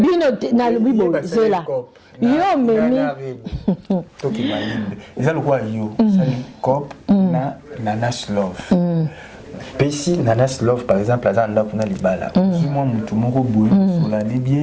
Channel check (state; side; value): identical; both; correlation 1.00